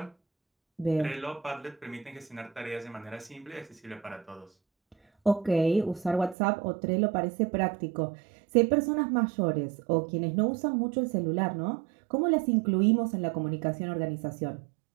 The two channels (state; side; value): drops out; left; at 6.4 s